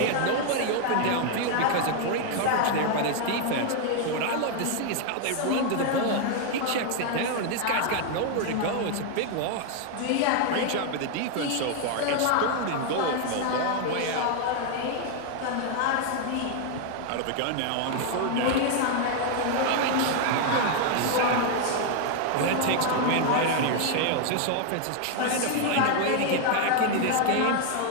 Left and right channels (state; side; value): different; both; correlation 0.00